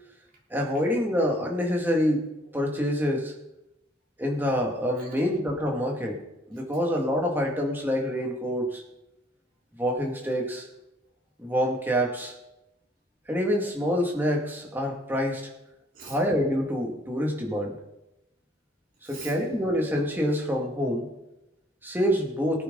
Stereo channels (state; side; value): normal; both; correlation 0.61